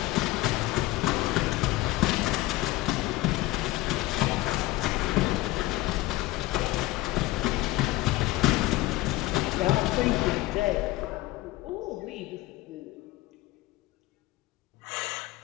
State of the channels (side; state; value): right; quieter; 18.1 dB